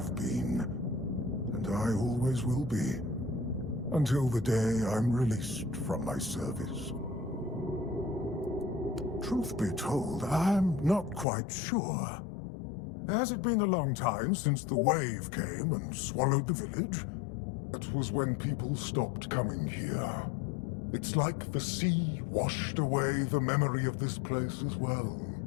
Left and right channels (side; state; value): right; drops out; at 11.2 s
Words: been, and I always will be, until the day I'm released from my service. Truth be told, I'm not quite sure. Has it been a long time since the wave came and swallowed the village? That was when people stopped coming here. It's like the sea washed away the memory of this place as well.